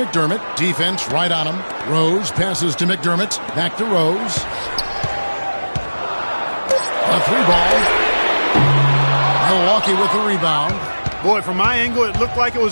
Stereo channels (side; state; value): both; inverted; correlation -1.00